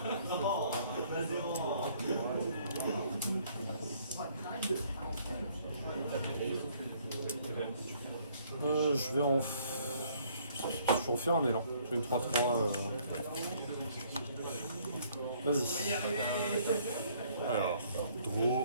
Je vais en faire un élan. J'ai une 3-3. Vas-y. Alors,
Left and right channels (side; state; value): both; inverted; correlation -0.62